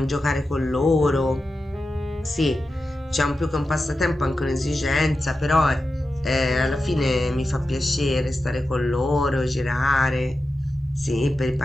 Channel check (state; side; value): normal; both; correlation 0.92